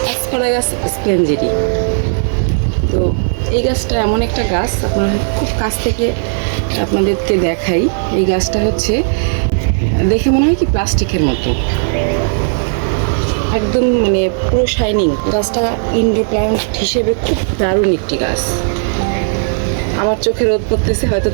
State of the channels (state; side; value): silent; left; digital silence